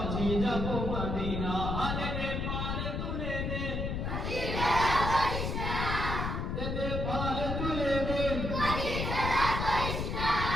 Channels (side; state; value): left; noise; rumble, 2 dB below the sound